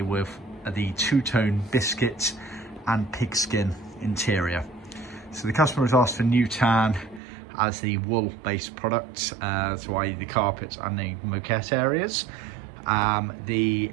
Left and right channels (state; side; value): drops out; left; at 7.2 s